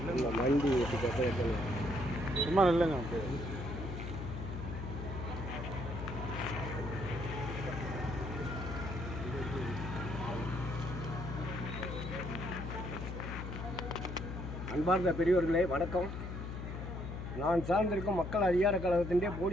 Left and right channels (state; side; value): noise; left; hum, 6 dB below the sound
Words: இல்லை மண்டி வச்சுட்டு சும்மா இல்லைங்க. அப்படியே அன்பார்ந்த பெரியவர்களே வணக்கம். நான் சார்ந்திருக்கும் மக்கள் அதிகார கழகத்திൻ്റെ